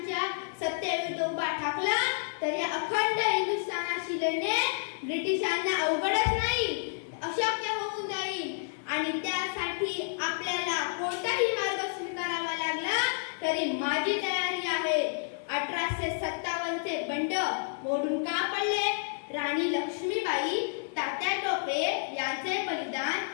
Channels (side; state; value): right; silent; digital silence